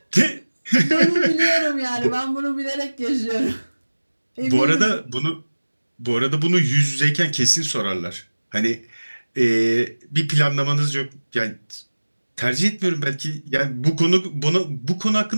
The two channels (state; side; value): inverted; both; correlation -1.00